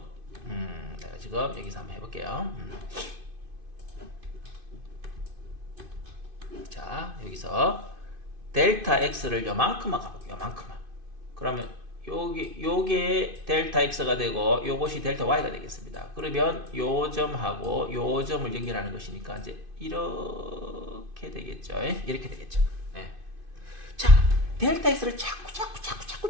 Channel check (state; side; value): late; left; 2.5 ms